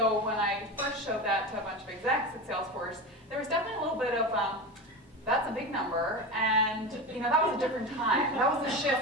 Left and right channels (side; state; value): both; normal; correlation 0.24